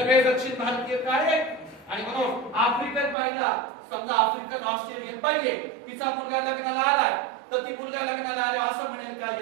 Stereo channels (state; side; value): drops out; left; at 3.2 s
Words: दक्षिण भारतीय काळे. आणि म्हणून आफ्रिकन बाईला, समजा आफ्रिकन ऑस्ट्रेलियन बाई आहे, तिचा मुलगा लग्नाला आलाय, तर ती मुलगा लग्नाला आले असं म्हणेल का